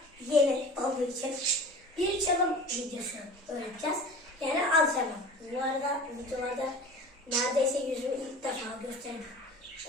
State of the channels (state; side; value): normal; both; correlation 0.39